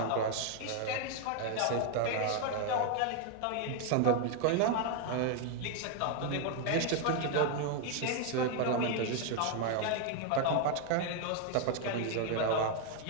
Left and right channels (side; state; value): both; different; correlation 0.01